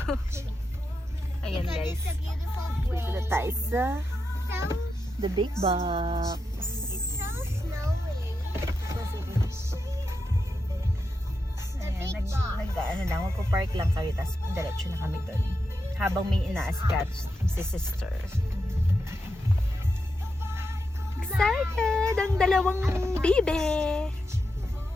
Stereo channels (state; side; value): normal; both; correlation 0.87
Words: Ayan, Because guys. it's a beautiful Dito na way. tayo sa So, the big box. it's so snowy. The Ayan, big box. ano lang, magpo-park lang kami, tapos diretso na kami doon. Habang may ina-ascatch si sister. Excited! Ang dalawang bibe!